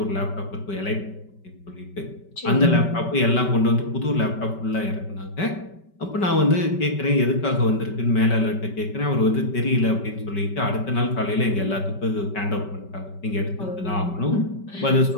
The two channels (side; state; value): right; late; 5.2 ms